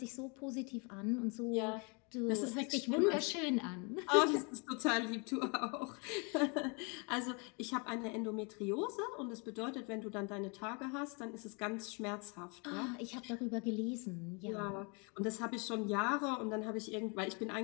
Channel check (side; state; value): right; quieter; 33.2 dB